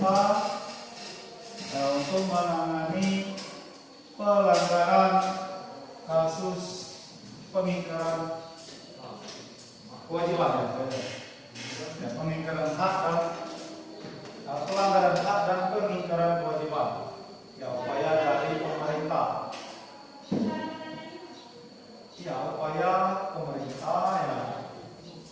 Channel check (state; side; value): identical; both; correlation 1.00